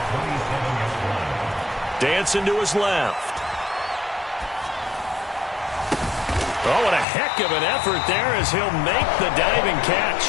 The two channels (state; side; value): drops out; right; at 7.1 s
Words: Dancing to his left. Oh, what a heck of an effort there as he'll make the diving